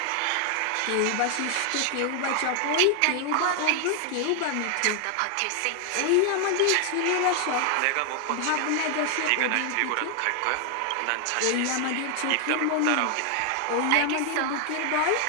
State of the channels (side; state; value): both; different; correlation 0.00